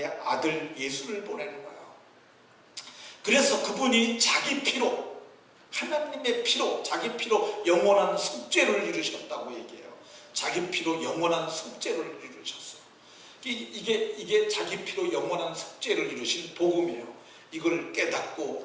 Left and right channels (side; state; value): both; identical; correlation 1.00